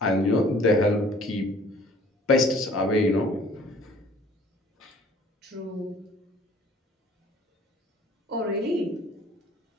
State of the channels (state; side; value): normal; both; correlation 0.53